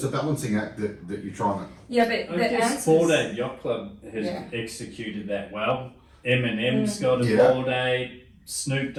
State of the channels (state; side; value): identical; both; correlation 1.00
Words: a balancing act that you're trying to. Yeah, but I the guess answer Bored is... Ape Yacht Club has Yeah. executed that well. Eminem's got a Yeah. Bored Ape. Snoop